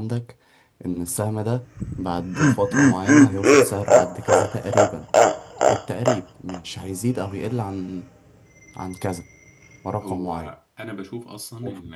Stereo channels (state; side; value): identical; both; correlation 1.00